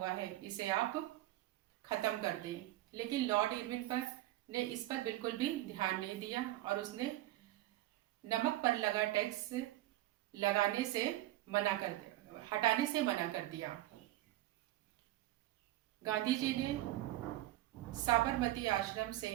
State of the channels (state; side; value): quieter; left; 16.1 dB